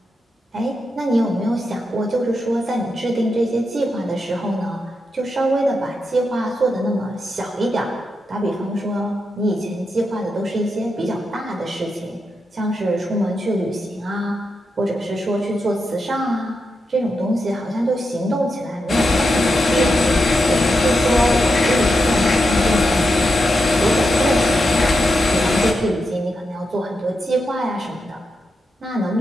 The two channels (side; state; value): both; normal; correlation 0.86